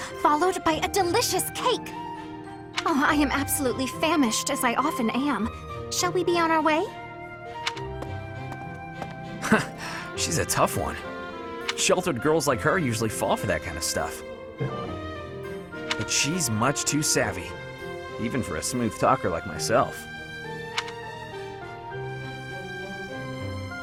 followed by a delicious cake. Oh, I am absolutely famished, as I often am. Shall we be on our way? She's a tough one. Sheltered girls like her usually fall for that kind of stuff. But she's much too savvy, even for a smooth talker like myself.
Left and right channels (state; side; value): identical; both; correlation 1.00